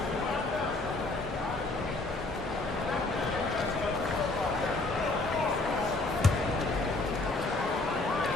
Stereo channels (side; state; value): right; quieter; 3.1 dB